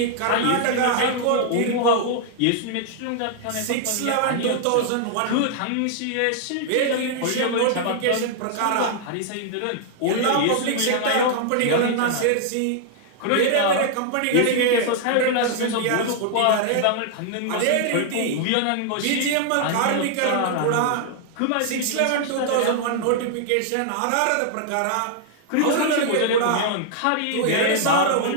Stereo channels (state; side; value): different; both; correlation -0.01